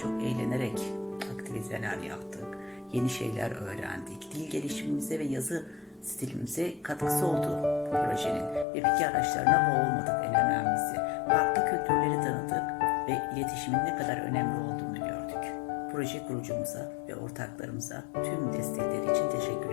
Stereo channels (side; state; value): right; drops out; at 8.7 s